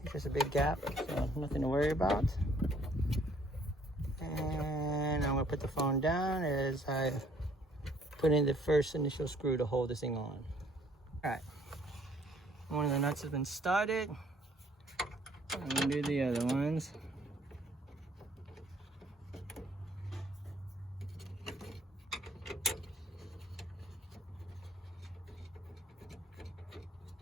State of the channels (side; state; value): both; normal; correlation 0.62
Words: It's just a big gap, so nothing to worry about. And I'm going to put the phone down as I put in the first initial screw to hold this thing on. All right, one of the nuts has been started. I'm going to do the other ones.